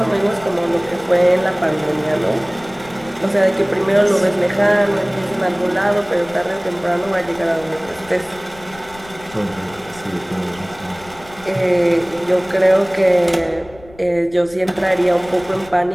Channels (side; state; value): left; noise; rumble, 22 dB below the sound